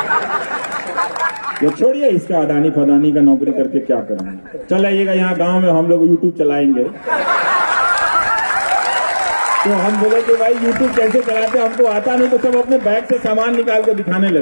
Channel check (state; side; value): inverted; both; correlation -1.00